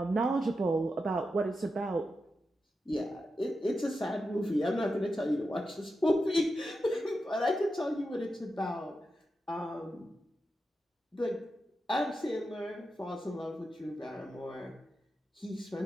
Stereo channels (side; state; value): both; normal; correlation 0.89